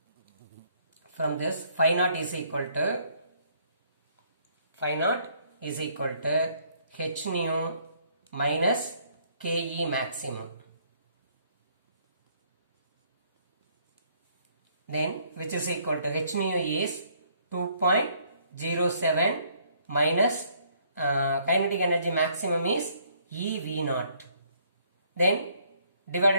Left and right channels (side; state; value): both; inverted; correlation -0.65